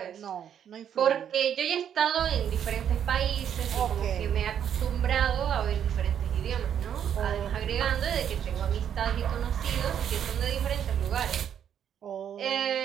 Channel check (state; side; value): quieter; left; 9.1 dB